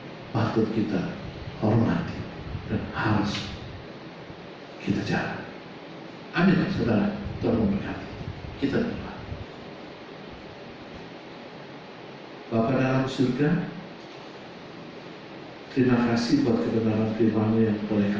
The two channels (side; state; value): both; identical; correlation 1.00